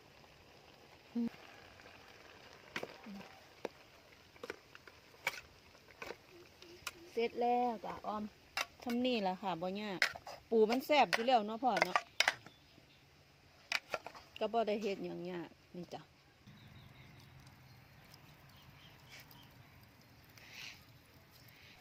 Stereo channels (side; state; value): both; identical; correlation 1.00